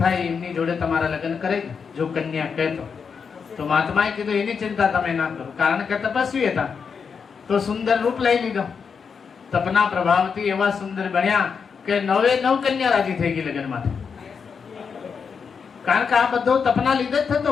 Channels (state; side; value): quieter; right; 6.1 dB